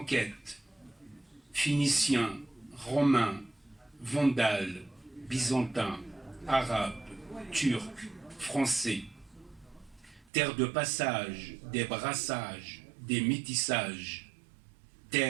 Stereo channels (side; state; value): left; drops out; at 10.2 s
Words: phéniciens, romains, vandales, byzantins, arabes, turcs, français. Terre de passage, des brassages, des métissages,